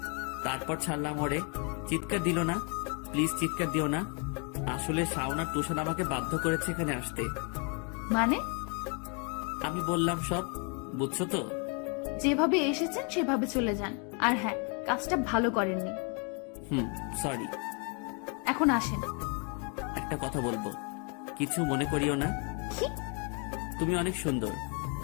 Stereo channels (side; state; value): right; quieter; 36.6 dB